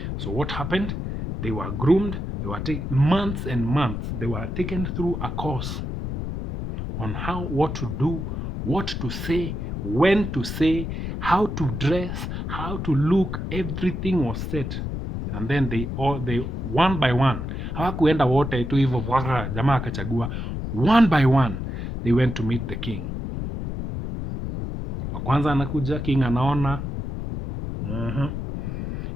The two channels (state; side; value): noise; left; rumble, 4 dB below the sound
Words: So what happened? They were groomed. They were months and months. They were taken through a course on what to do, what to say, when to say, how to dress, how to look. Everything was set. And then they one by one, hawakuenda wote tu hivyo jamaa akachagua. One by one they went to meet the king. Wa kwanza anakuja, king anaona.